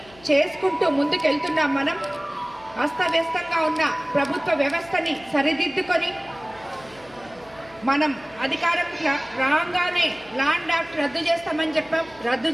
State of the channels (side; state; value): left; noise; hum, 24 dB below the sound